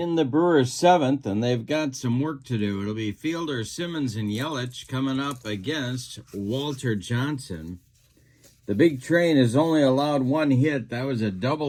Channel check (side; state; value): both; identical; correlation 1.00